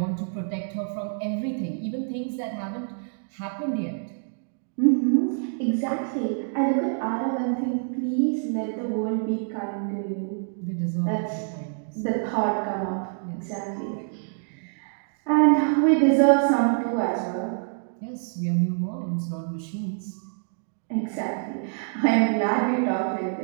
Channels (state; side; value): silent; left; digital silence